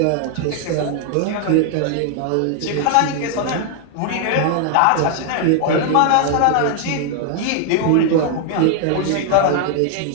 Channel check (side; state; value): both; different; correlation 0.00